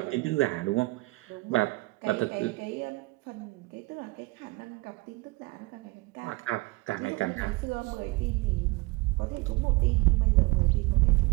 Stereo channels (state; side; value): quieter; left; 23.6 dB